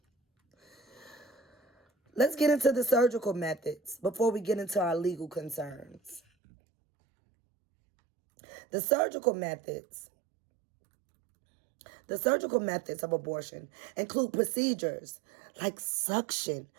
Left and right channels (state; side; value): drops out; left; at 6.2 s